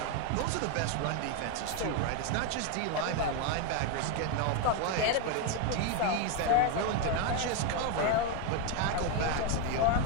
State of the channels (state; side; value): different; both; correlation 0.02